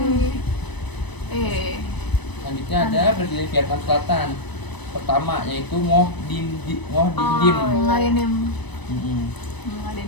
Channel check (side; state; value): right; late; 1.0 ms